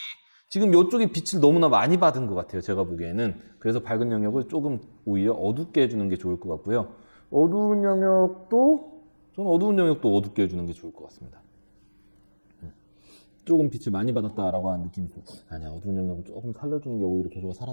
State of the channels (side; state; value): both; inverted; correlation -1.00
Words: 지금 이쪽에 빛을 너무나 많이 받은 것 같아요. 제가 보기에는. 그래서 밝은 영역을 조금 오히려 어둡게 해주는 게 좋을 것 같고요. 어두운 영역도 어둡게 해주는 게 좋을 것 같습니다. 조금 빛을 많이 받았다라고 하는 느낌이 좀 아니야. 어두운 영역을 조금 살려주는 게 오히려 계속